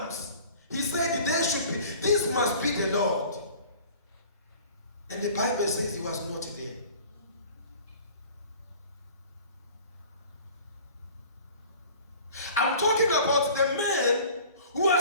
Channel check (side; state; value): both; inverted; correlation -0.46